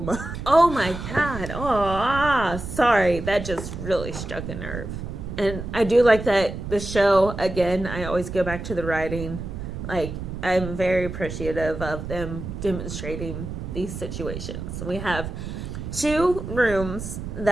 Oh my God. Oh, sorry. That just really struck a nerve. And I do like that the show, again, I always go back to the writing. I'm very appreciative of them demonstrating these situations. We have 2 rooms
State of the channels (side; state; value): right; noise; rumble, 7 dB below the sound